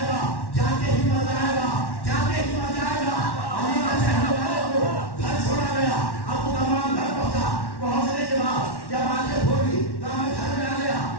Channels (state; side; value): late; right; 1.1 ms